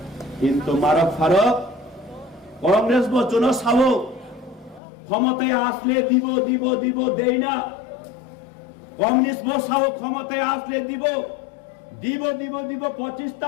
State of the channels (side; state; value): right; drops out; at 4.8 s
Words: কিন্তু মারক ফারক কংগ্রেস বচন সাবো ক্ষমতায় আসলে দিব দিব দিব দেই না কমিউনিস্ট বসাবো ক্ষমতায় আসলে দিব দিব দিব দিব 25টা